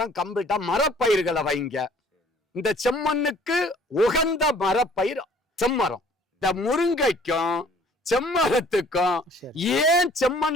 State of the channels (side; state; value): both; normal; correlation 0.55